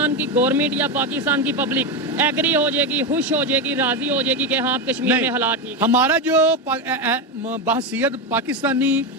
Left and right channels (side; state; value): both; normal; correlation 0.12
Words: کی گورنمنٹ یا پاکستان کی پبلک ایگری ہو جائے گی, خوش ہو جائے گی, راضی ہو جائے گی کہ ہاں کشمیر میں حالات ٹھیک. ہمارا جو بحثیت پاکستانی